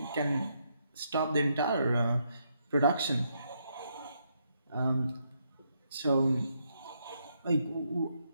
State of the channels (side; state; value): both; inverted; correlation -0.77